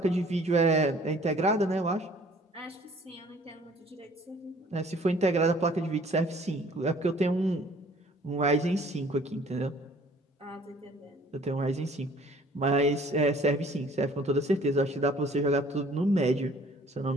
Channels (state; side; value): normal; both; correlation 0.54